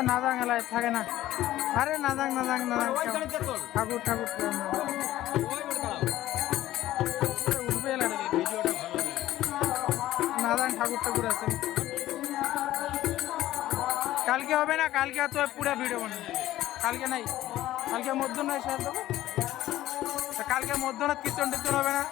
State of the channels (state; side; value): quieter; right; 14.6 dB